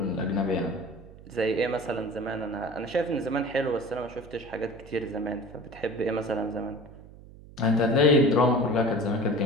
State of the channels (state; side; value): noise; right; hum, 19 dB below the sound